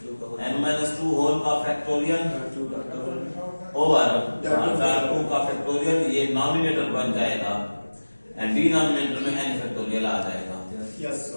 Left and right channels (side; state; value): both; inverted; correlation -1.00